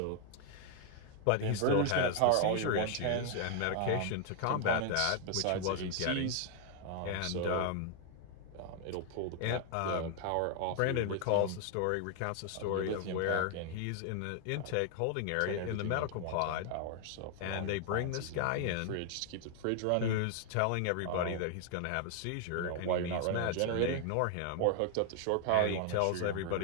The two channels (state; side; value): different; both; correlation 0.00